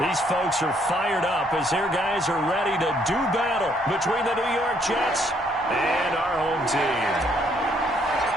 These folks are fired up as their guys are ready to do battle between the New York Jets and our home team.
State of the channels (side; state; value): both; normal; correlation 0.68